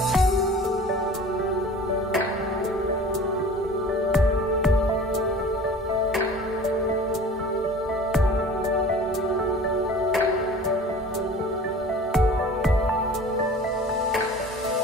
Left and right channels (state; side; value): normal; both; correlation 0.42